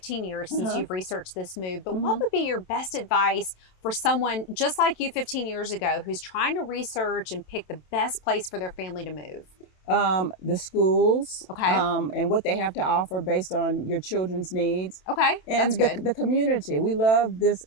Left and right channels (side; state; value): right; late; 27 ms